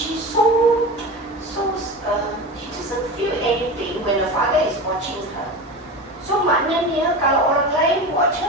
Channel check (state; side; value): normal; both; correlation 0.27